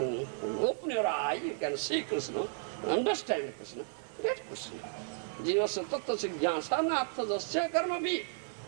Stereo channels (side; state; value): left; silent; digital silence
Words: open your eye, you can see Krishna, understand Krishna, get Krishna. Jivasya tattva siddhyasa natha jasya karma bhi.